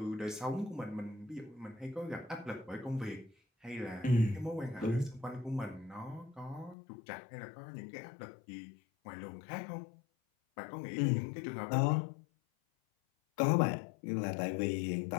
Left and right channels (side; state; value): right; drops out; at 6.8 s